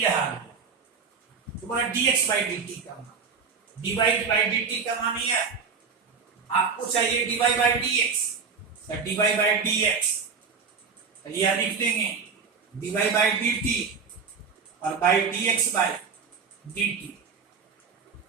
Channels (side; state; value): left; quieter; 5.5 dB